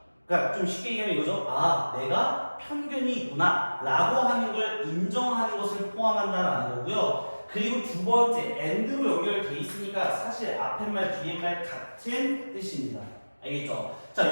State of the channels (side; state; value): both; inverted; correlation -1.00